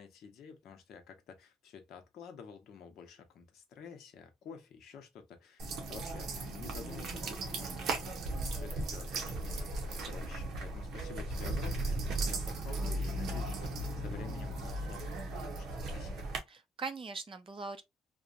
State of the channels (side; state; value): both; normal; correlation 0.68